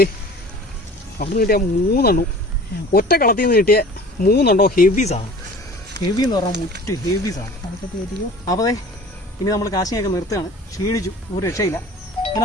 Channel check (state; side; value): normal; both; correlation 0.43